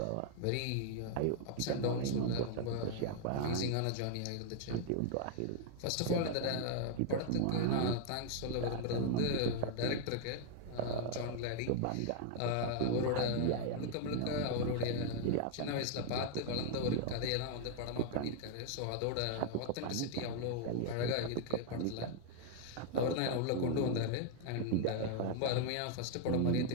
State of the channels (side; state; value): both; different; correlation 0.00